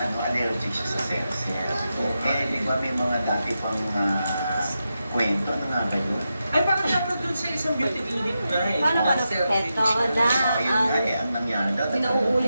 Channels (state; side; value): inverted; both; correlation -0.88